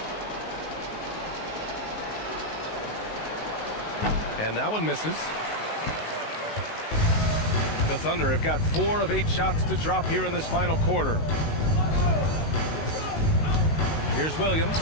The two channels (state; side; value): late; right; 19 ms